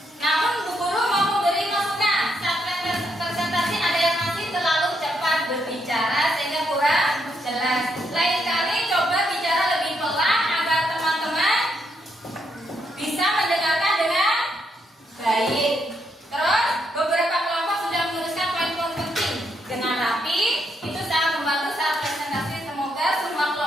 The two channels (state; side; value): normal; both; correlation 0.77